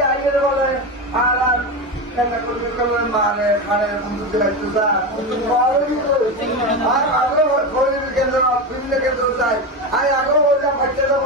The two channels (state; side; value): normal; both; correlation 0.18